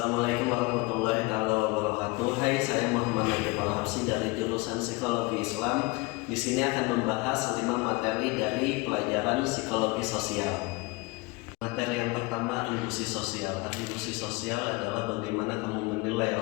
warahmatullahi wabarakatuh. Hai, saya Muhammad Nakib Al-Habsyi dari jurusan Psikologi Islam. Di sini akan membahas 5 materi dari pelajaran psikologi sosial. Materi yang pertama, atribusi sosial. Atribusi sosial adalah bagaimana kamu menilai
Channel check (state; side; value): quieter; right; 24.7 dB